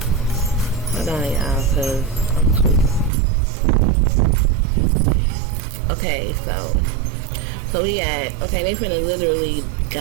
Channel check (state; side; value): drops out; left; at 3.1 s